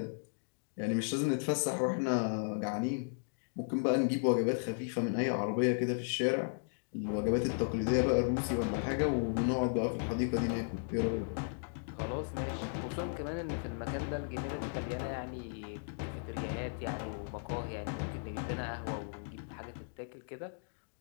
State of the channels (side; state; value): right; silent; digital silence